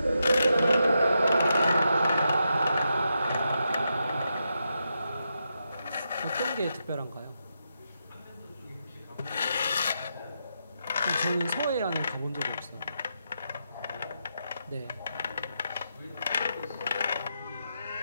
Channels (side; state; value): both; inverted; correlation -0.84